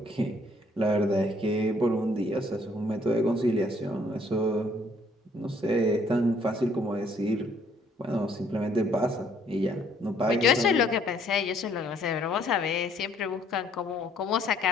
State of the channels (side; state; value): both; normal; correlation 0.64